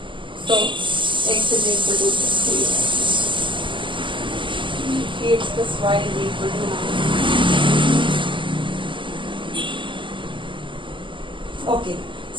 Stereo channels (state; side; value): late; left; 0.24 ms